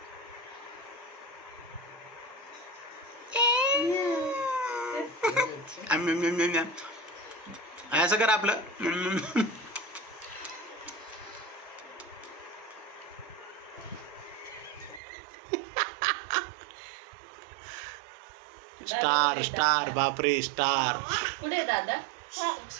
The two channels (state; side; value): drops out; left; at 15.0 s